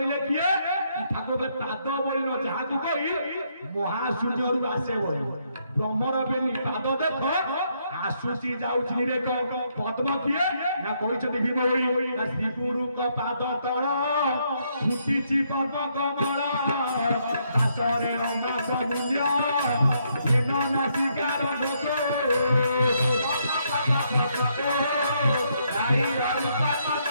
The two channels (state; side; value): inverted; both; correlation -0.74